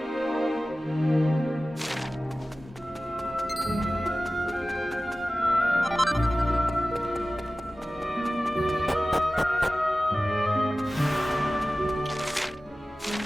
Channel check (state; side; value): normal; both; correlation 0.96